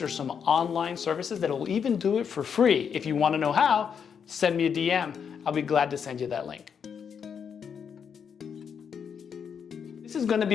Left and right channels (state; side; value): quieter; right; 7.1 dB